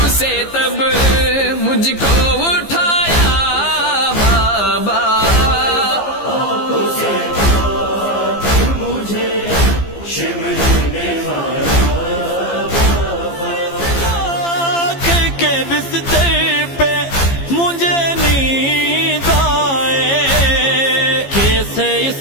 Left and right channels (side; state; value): right; late; 15 ms